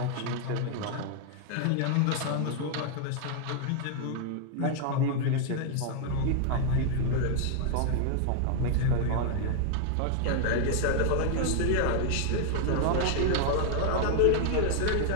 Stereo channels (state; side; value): different; both; correlation 0.00